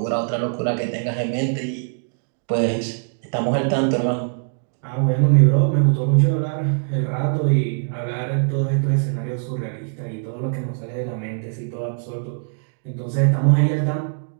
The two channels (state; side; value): silent; left; digital silence